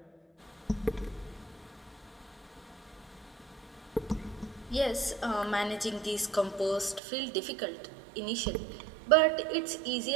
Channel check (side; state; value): left; drops out; at 7.0 s